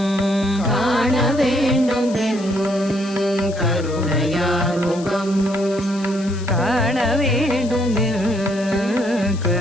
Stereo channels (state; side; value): noise; left; hiss, 18 dB below the sound